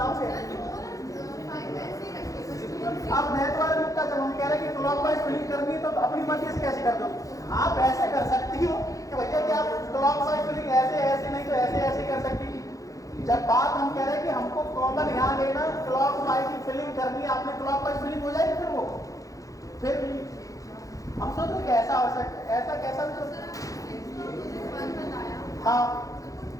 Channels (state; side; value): late; right; 0.16 ms